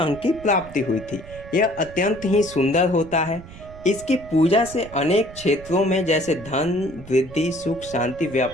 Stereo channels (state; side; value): noise; right; rumble, 17 dB below the sound